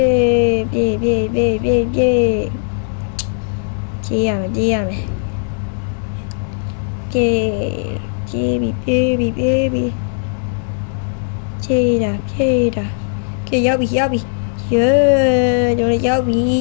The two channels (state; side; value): silent; right; digital silence